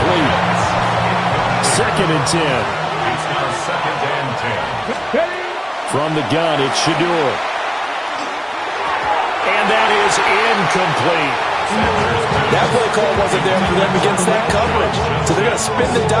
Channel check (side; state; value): both; identical; correlation 1.00